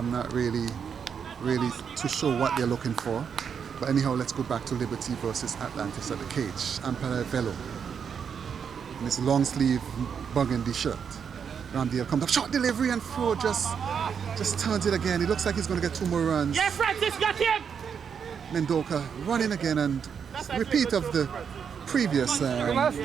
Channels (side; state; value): left; quieter; 7.0 dB